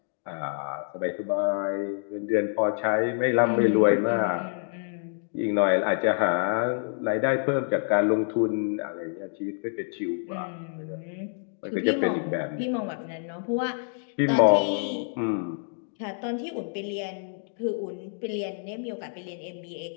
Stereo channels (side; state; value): right; silent; 60 dB below the other